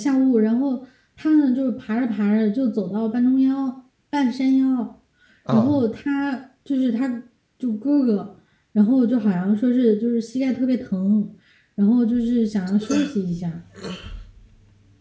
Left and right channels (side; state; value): both; identical; correlation 1.00